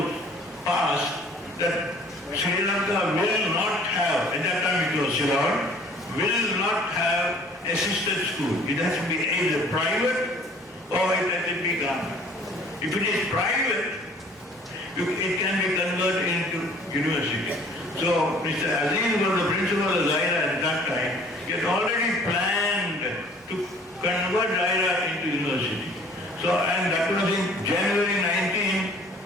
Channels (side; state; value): both; normal; correlation 0.53